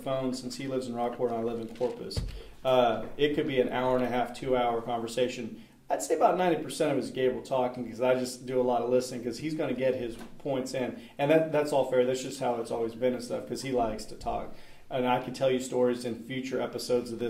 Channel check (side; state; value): both; identical; correlation 1.00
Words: since he lives in Rockport and I live in Corpus, it could be an hour and a half, 2-hour conversation. I'd say about 90% of it is Gabriel talking because I just do a lot of listening because he's going to get his points in. And that's all fair. That's just how it's always been and stuff because he likes to talk. And I can tell you stories in future episodes of